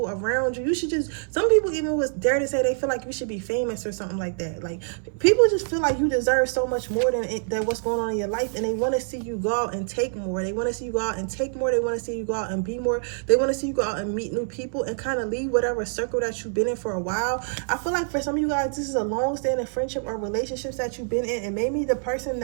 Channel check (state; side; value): silent; left; 61 dB below the other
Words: around you. You should just, some people even would dare to say they feel like you should be famous or something like that. Like, people just feel like you deserve so much more than what's going on in your life, and they want to see you go out and take more. They want to see you go out and take more. They want to see you go out and be more. They want to see you go out and meet new people and kind of leave whatever circle that you've been in for a while. I feel like for some of you guys, this is a long-standing friendship or relationships that you've been in, and maybe the person